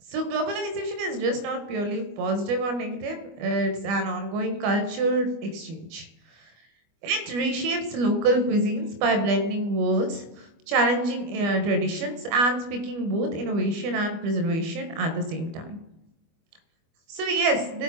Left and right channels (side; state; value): left; late; 25 ms